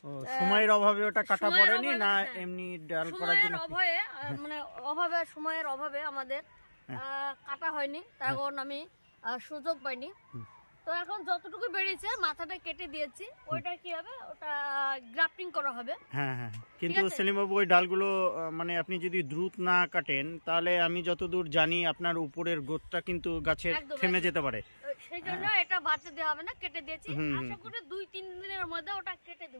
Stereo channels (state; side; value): inverted; both; correlation -1.00